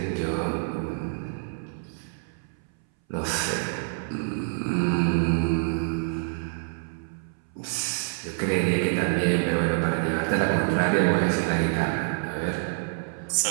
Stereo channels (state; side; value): silent; left; 60 dB below the other